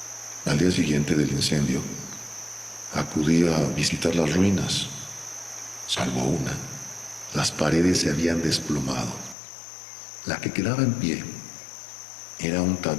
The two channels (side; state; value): right; drops out; at 9.3 s